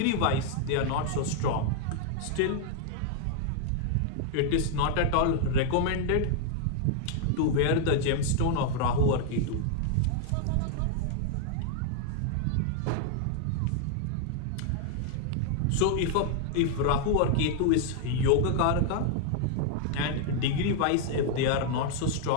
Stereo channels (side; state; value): both; different; correlation 0.00